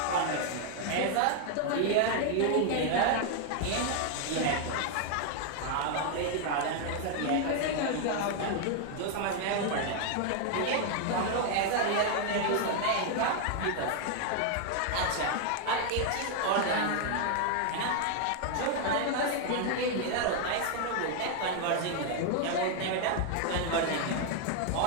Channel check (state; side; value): different; both; correlation 0.00